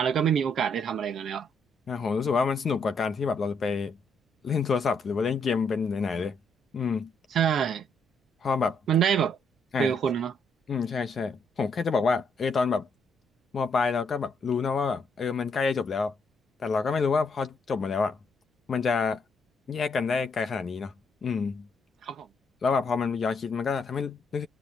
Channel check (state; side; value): normal; both; correlation 0.73